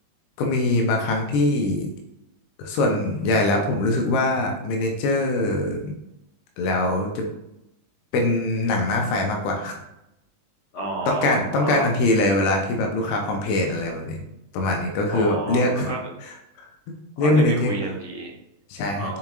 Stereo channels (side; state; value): right; late; 20 ms